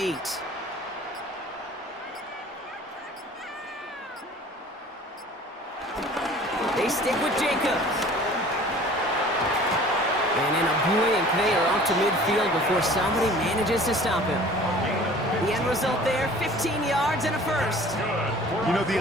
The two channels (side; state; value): both; normal; correlation 0.47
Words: They stick with Jacobs. And in a blink, they are off to midfield before somebody manages to stop him. The end result there, 15 yards and a first. You know, the